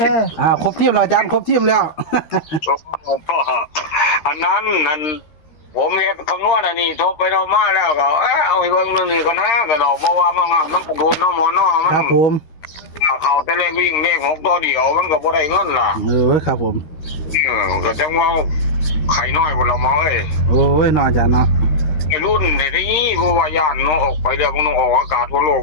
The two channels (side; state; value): right; late; 13 ms